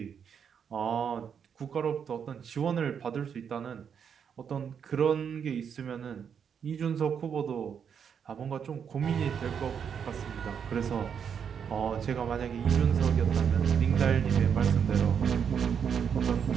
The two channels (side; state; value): left; quieter; 7.4 dB